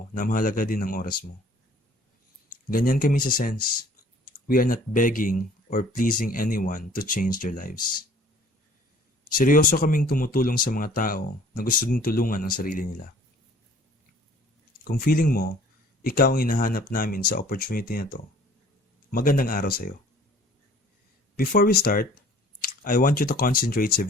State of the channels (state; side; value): normal; both; correlation 0.53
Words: na mahalaga din ang oras mo. Ganyan kami sa Sense. We are not begging or pleasing anyone to change their lives. Seryoso kaming tumutulong sa mga tao na gusto din tulungan ang sarili nila. Kung feeling mo, ikaw ang hinahanap namin sa opportunity na to, magandang araw sa'yo. Before we start, I want you to concentrate sa